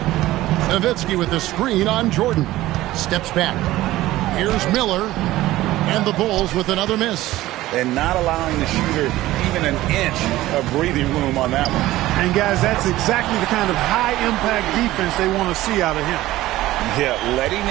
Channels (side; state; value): left; quieter; 16.2 dB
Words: Nowitzki with the screen on Jordan. Steps back. Here's Miller. And the Bulls with another miss. And not allowing the shooter even an inch of breathing room on that one. And, guys, that's exactly the kind of high-impact defense they want to see out of him. Yeah, letting